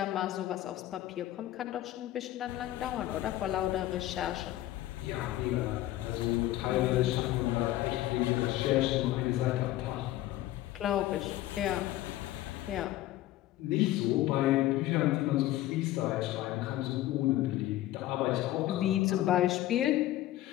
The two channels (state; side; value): quieter; right; 14.9 dB